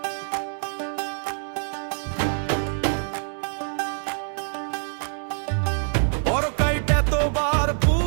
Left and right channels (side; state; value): left; silent; digital silence